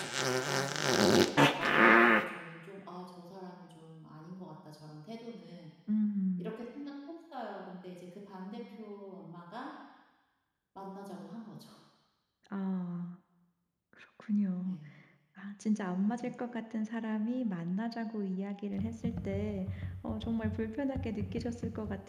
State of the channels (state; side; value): identical; both; correlation 1.00